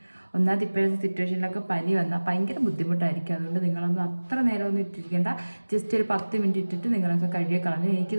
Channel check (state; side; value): inverted; both; correlation -1.00